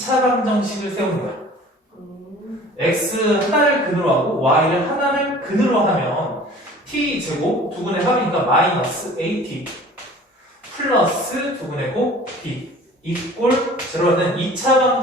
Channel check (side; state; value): both; normal; correlation 0.46